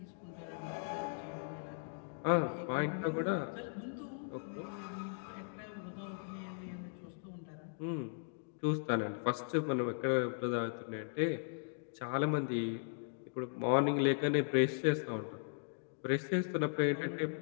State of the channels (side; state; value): right; silent; digital silence